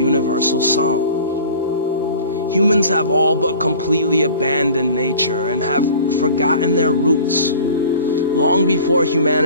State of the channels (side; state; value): both; inverted; correlation -0.43